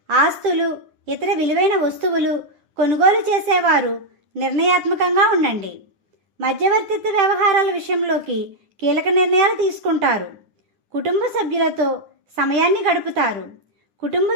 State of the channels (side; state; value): left; late; 9.7 ms